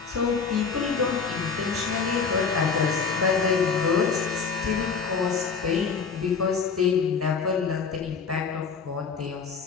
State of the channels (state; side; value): quieter; right; 5.5 dB